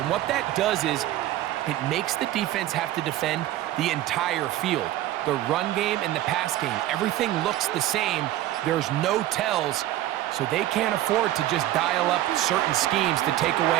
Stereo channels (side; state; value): left; quieter; 14.3 dB